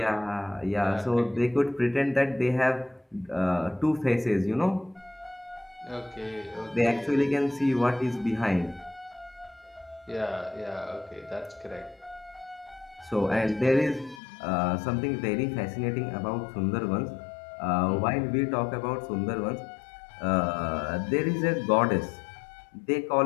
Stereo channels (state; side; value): drops out; right; at 14.2 s